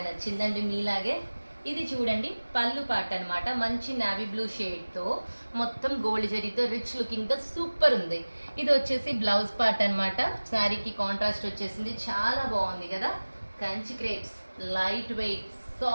నచ్చిందండి మీలాగే. ఇది చూడండి పళ్ళు పార్ట్ అనమాట. మంచి నావీ బ్లూ షేడ్తో మొత్తం గోల్డ్ జరీతో రిచ్ లుకింగ్తో సూపర్ ఉంది. ఇది వచ్చేసి బ్లౌజ్ పార్ట్ అనమాట. శారీకి కాంట్రాస్ట్ వచ్చేసింది. చాలా బాగుంది కదా. Kanchi crepes, light weight,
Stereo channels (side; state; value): both; inverted; correlation -1.00